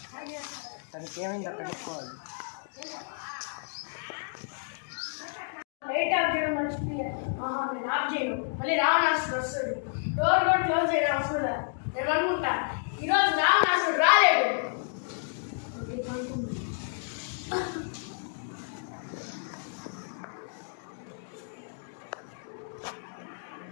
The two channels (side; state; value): right; silent; digital silence